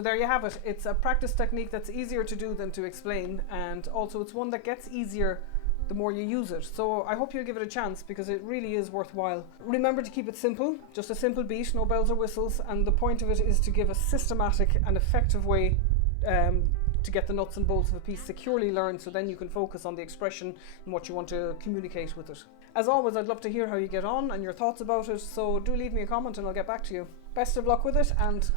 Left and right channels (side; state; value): both; different; correlation 0.00